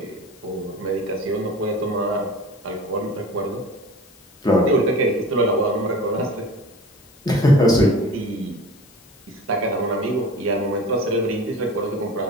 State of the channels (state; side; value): noise; left; hiss, 27 dB below the sound